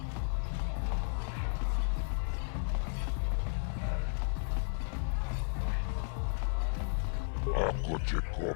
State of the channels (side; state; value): right; silent; digital silence